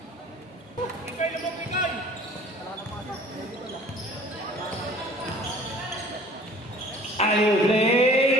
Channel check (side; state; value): both; normal; correlation 0.49